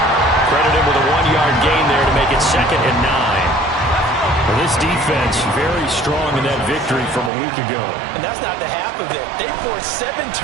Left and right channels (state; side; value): drops out; left; at 7.3 s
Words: Credit him with a 1-yard gain there to make it 2nd and 9. Well, this defense very strong in that victory from a week ago. And that's not the half of it. They forced 7